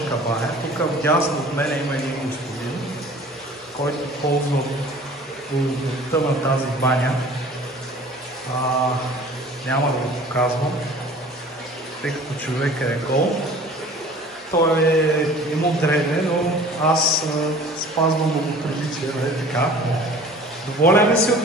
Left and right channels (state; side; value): normal; both; correlation 0.46